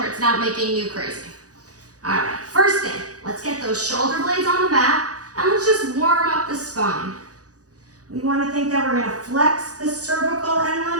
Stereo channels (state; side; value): late; left; 0.67 ms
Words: it's not making you crazy. All right, first thing, let's get those shoulder blades on the mat and let's just warm up the spine. We want to think that we're going to flex the cervical and